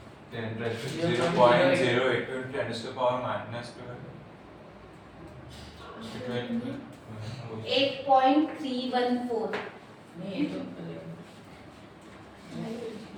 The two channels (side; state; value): both; identical; correlation 1.00